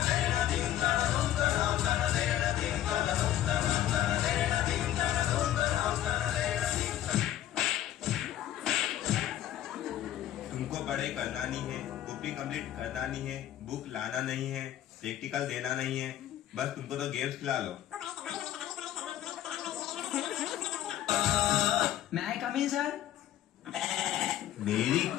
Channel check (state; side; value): quieter; right; 12.4 dB